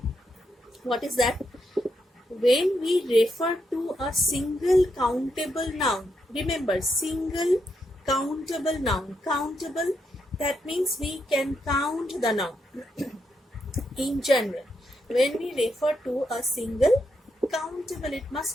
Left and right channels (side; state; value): both; normal; correlation 0.81